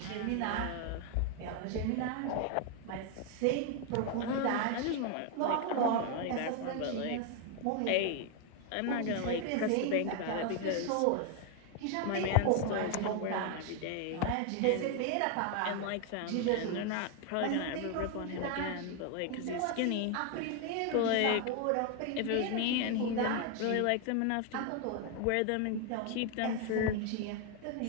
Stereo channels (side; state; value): both; different; correlation 0.01